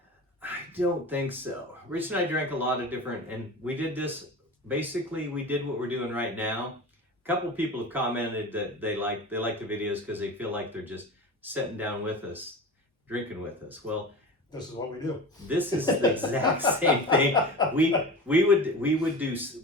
I don't think so. Rich and I drank a lot of different, and we did this. Basically, we did what we're doing right now. A couple people have commented that they like the videos because they feel like they're just sitting down with us, drinking with us. Well, this is what we do. This is the exact same thing. We would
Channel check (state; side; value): normal; both; correlation 0.32